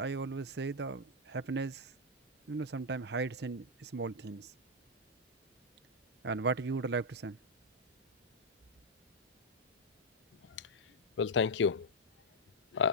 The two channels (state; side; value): normal; both; correlation -0.03